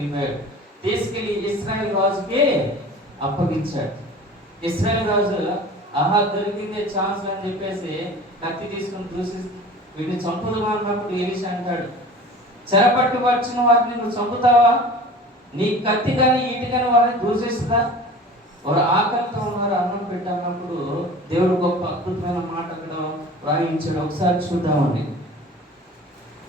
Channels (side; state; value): both; normal; correlation 0.40